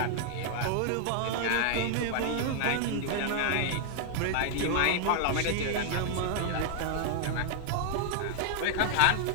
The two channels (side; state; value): both; different; correlation 0.00